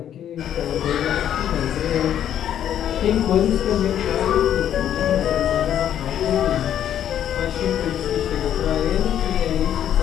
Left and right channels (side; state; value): right; quieter; 10.3 dB